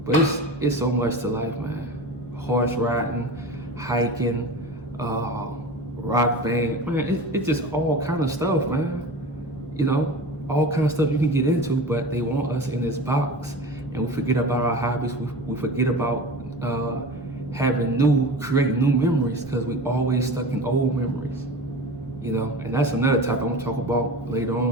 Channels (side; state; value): both; normal; correlation 0.33